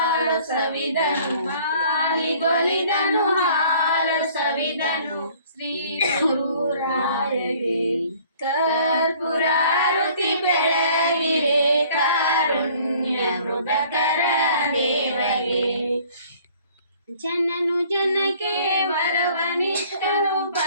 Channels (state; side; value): inverted; both; correlation -0.54